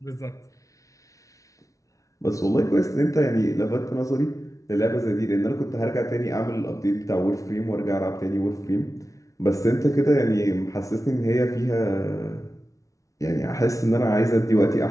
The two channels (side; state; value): right; late; 0.16 ms